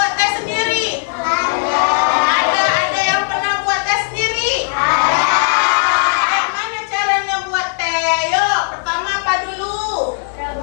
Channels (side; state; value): right; silent; 68 dB below the other